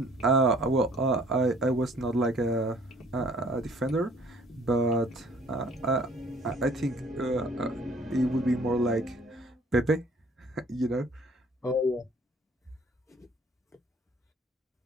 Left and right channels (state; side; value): normal; both; correlation 0.57